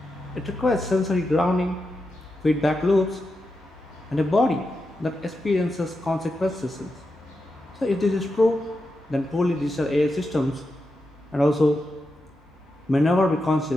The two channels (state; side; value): normal; both; correlation 0.88